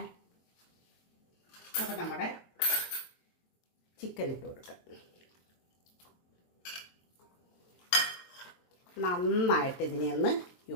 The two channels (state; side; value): late; right; 22 ms